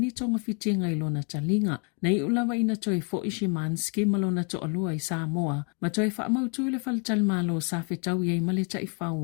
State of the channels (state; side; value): quieter; right; 37.2 dB